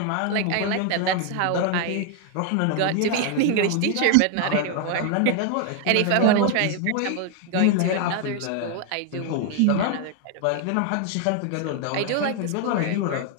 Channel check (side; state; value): both; different; correlation 0.00